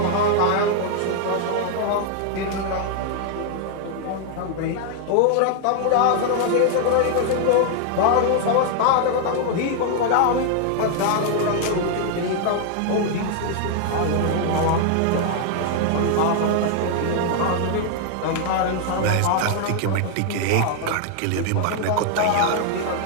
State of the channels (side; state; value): both; different; correlation 0.00